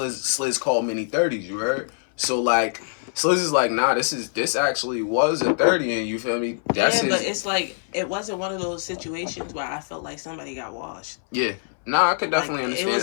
call many 30s, you heard? So, like, Sliz is like, nah, this actually was a 30, and you feel me? But it's like, it wasn't one of those situations where I felt like somebody got washed. Yeah. Nah, I could definitely understand. It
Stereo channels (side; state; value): right; silent; 60 dB below the other